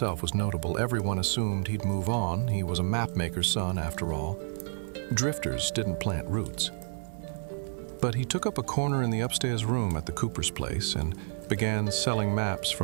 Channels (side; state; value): left; silent; digital silence